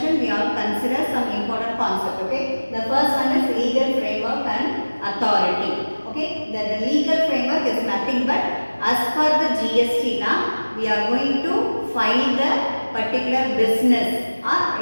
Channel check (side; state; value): both; inverted; correlation -1.00